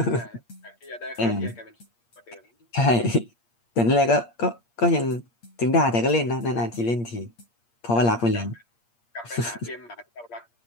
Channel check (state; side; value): late; right; 8.6 ms